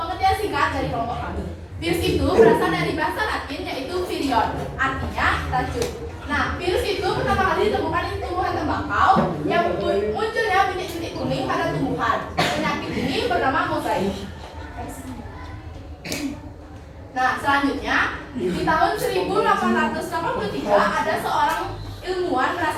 singkat dari kelompok kami. Virus itu berasal dari bahasa Latin yaitu virion, artinya racun. Nah, virus itu pertama kali ditemukan di tumbuhan tembakau yang munculnya bintik-bintik kuning pada tumbuhan. Penyakit ini bernama mozaik. Nah, selanjutnya di tahun 1883 ada seorang ilmuwan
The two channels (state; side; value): identical; both; correlation 1.00